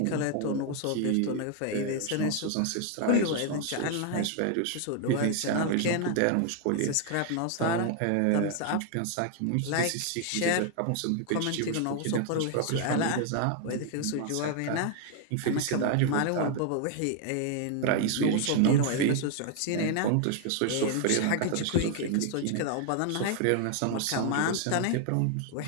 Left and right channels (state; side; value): different; both; correlation 0.00